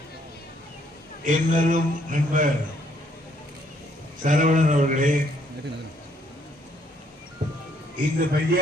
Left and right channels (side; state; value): both; normal; correlation 0.68